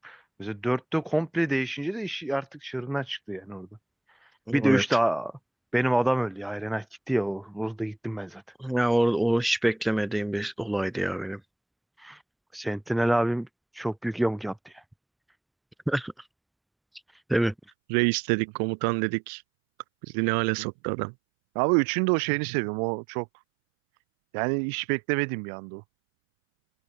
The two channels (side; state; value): left; drops out; at 17.7 s